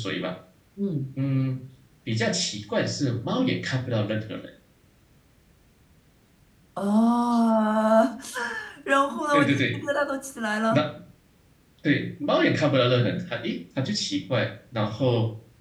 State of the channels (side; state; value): both; identical; correlation 1.00